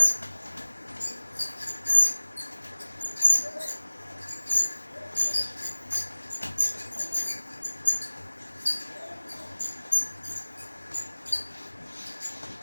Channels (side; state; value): both; inverted; correlation -1.00